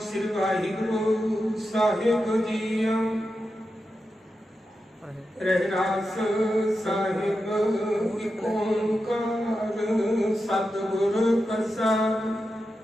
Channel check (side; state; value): both; normal; correlation 0.89